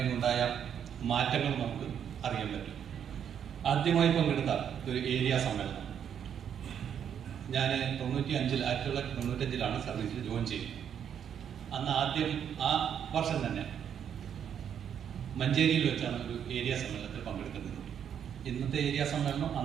മാറ്റങ്ങൾ നമുക്ക് അറിയാൻ പറ്റും. ആദ്യമായി പങ്കെടുത്ത ഒരു ഏരിയ സമ്മേളനം ഞാൻ 1995 സർവീസിൽ ജോയിൻ ചെയ്തത്. അന്ന് ആദ്യം ആ വർഷം തന്നെ മഞ്ചേരിയിൽ വെച്ചാണ് ഒരു ഏരിയ സമ്മേളനത്തിൽ പങ്കെടുക്കുന്നത്. ഇന്നത്തെ ഏരിയ സമ്മേളനം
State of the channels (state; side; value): quieter; left; 8.6 dB